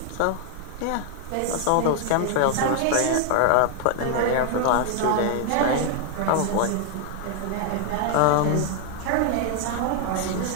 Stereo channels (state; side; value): different; both; correlation 0.00